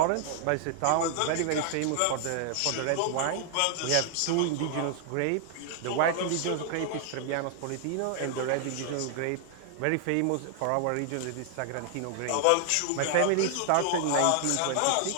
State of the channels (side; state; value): both; different; correlation 0.00